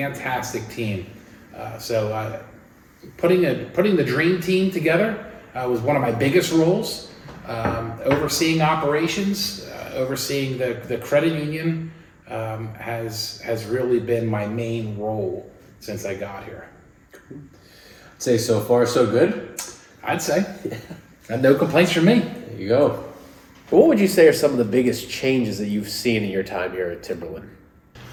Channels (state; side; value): identical; both; correlation 1.00